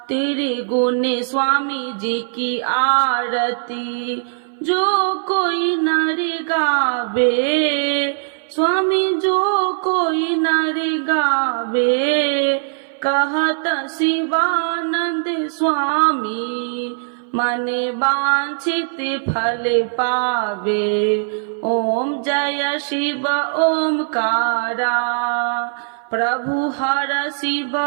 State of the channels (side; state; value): left; silent; 60 dB below the other